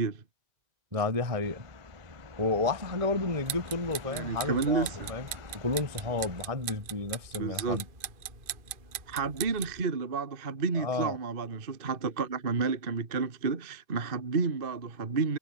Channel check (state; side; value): late; left; 2.4 ms